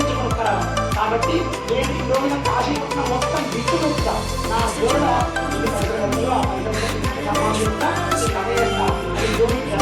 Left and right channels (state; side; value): identical; both; correlation 1.00